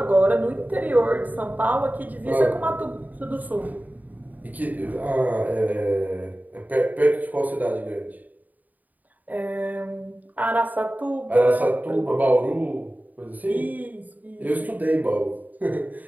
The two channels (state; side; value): late; left; 0.080 ms